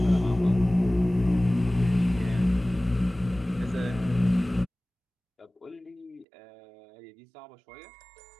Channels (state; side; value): drops out; left; at 6.2 s